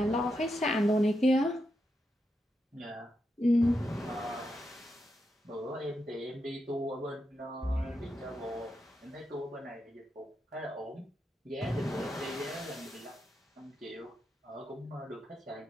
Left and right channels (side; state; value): both; normal; correlation 0.85